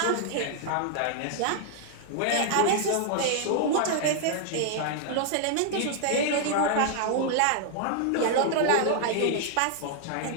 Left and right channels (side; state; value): both; different; correlation 0.00